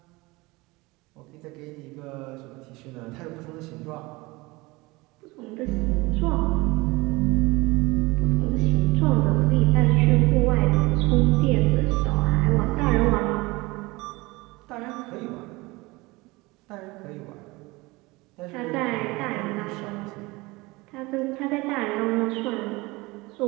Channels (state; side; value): quieter; left; 22.8 dB